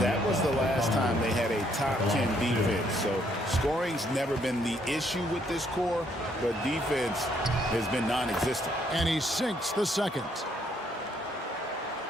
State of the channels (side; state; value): both; normal; correlation 0.70